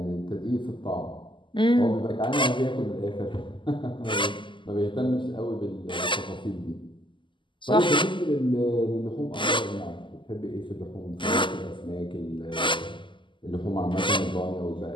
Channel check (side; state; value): right; late; 0.24 ms